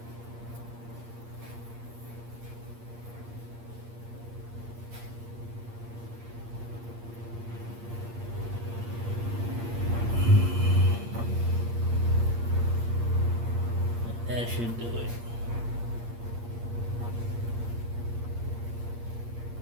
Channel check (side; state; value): left; late; 8.6 ms